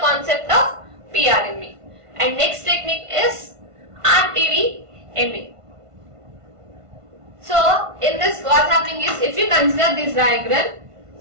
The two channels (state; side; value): late; left; 1.5 ms